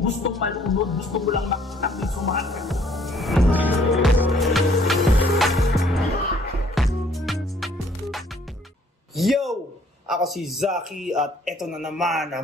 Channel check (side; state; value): both; normal; correlation 0.61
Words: malunod, gusto mo lang makita may sumakit. Yo! Ako si Zaki at eto na naman